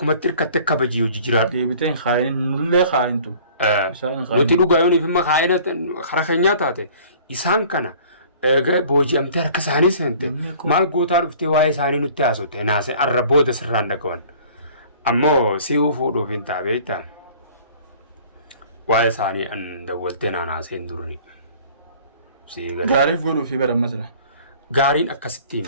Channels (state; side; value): inverted; both; correlation -0.50